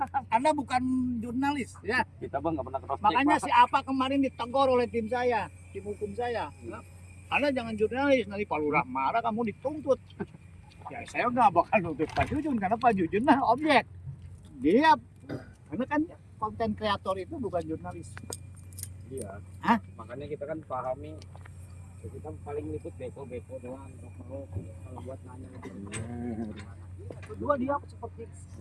Anda bukan jurnalis ya. Kita bang nggak pernah cross check. Makanya si apa kemarin ditegur oleh tim saya, tim hukum saya. Anda jangan jurnalis, nanti Pak Lurah marah kamu dituntut. Ya saya nggak bakal nuntut Pak Jujun karena Pak Jujun mah objek. Dia karena kan konten kreator itu bukan jurnalis. Iya. Hah? Makanya kita kan pahami. Kita paling ikut beko doang kalau buat nanya. Kedua dia seperti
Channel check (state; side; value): identical; both; correlation 1.00